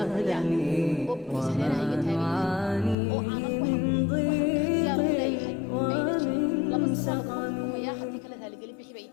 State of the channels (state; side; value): drops out; right; at 3.0 s